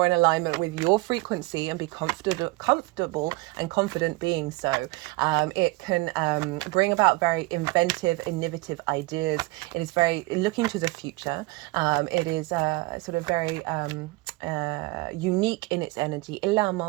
in alignment with your frequency and be comfortable and confident being so. It can bring about very inventive, innovative ideas. It is very looking to the future. It is sort of very unique in its energy. And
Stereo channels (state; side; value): quieter; left; 23.0 dB